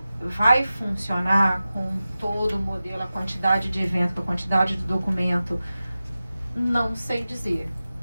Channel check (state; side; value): inverted; both; correlation -0.95